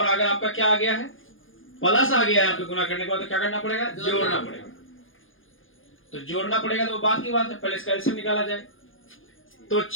अगर आपका क्या आ गया है, प्लस आ गया है आपके गुना करने के बाद तो क्या करना पड़ेगा, जोड़ना पड़ेगा। तो जोड़ना पड़ेगा तो बात की बात है, पहले इसका एलसीएम निकाला जाए। तो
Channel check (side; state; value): right; late; 0.58 ms